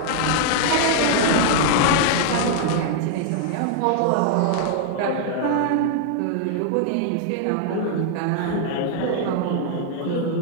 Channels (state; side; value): different; both; correlation -0.01